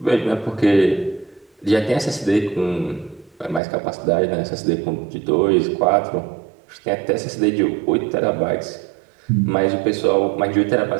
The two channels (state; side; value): drops out; left; at 3.6 s